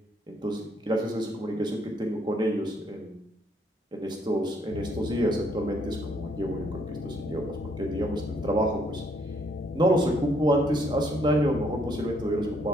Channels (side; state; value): both; normal; correlation 0.69